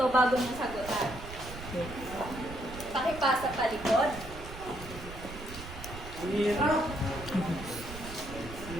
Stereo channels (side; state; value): right; noise; rumble, 12 dB below the sound